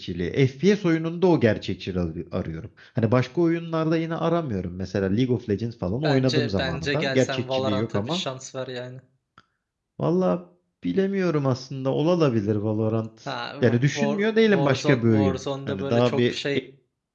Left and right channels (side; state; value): both; identical; correlation 1.00